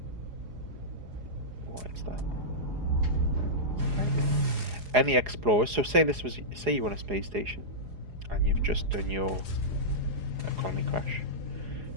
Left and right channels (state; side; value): late; left; 4.8 ms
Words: What is that? Any explorers. So say you're on a space station, and you've just done your economy crash.